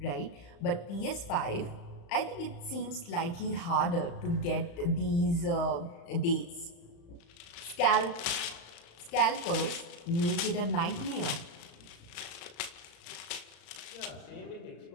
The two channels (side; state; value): right; late; 35 ms